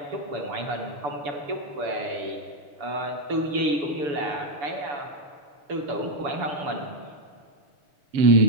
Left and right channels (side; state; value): left; late; 6.9 ms